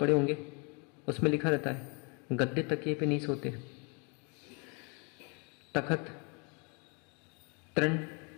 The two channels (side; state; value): right; quieter; 33.9 dB